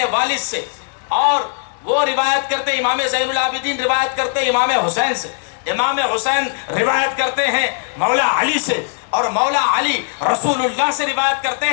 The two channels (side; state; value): right; silent; digital silence